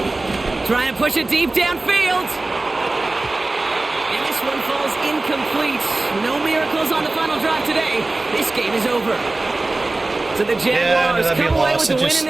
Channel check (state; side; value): quieter; left; 3.1 dB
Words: Trying to push it deep downfield. And this one falls incomplete. No miracles on the final drive today. This game is over. So the Jaguars come away with the win in